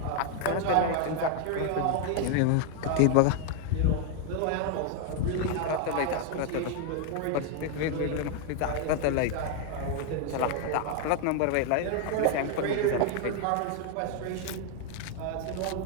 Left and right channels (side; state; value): both; different; correlation 0.00